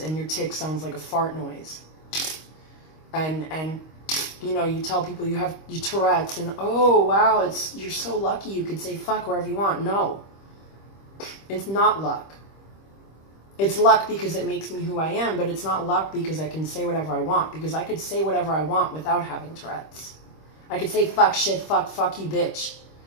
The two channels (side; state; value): right; late; 25 ms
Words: and your tic sounds like a fart noise. And you know, you tell people you have your Tourette's and, oh, wow, you're so lucky you could say fuck wherever you want. No, it's not luck. It's luck because it makes me who I am, but it's not luck because I can say whatever I want, because I could say whatever I want without having Tourette's. I could say fuck, shit, fuck you, bitch,